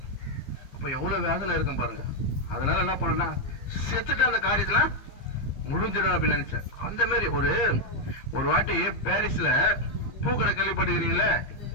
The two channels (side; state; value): right; late; 15 ms